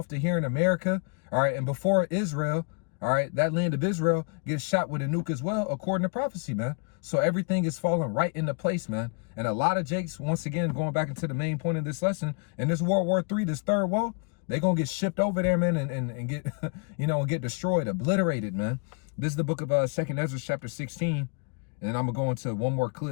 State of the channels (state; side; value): quieter; right; 37.6 dB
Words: to here in America, all right, and before Israel, all right, that land of Israel gets shot with a nuke as well, according to prophecy, man. So everything is falling right into place, man. And a lot of Jakes, once again, going back into the main point of this lesson, in this World War III, this third woe, they're going to get shipped over there, man, and get, you know, get destroyed, obliterated, man. This is the book of 2nd Ezra chapter 16. And I'm going to go into one more